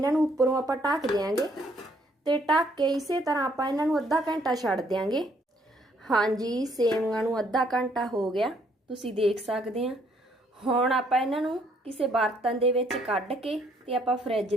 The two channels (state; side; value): normal; both; correlation 0.67